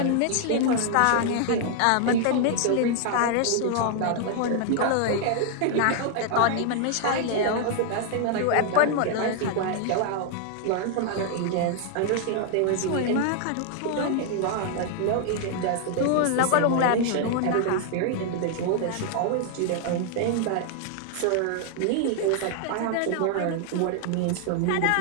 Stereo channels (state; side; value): different; both; correlation 0.00